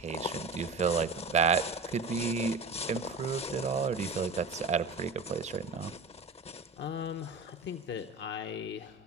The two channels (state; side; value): quieter; left; 3.6 dB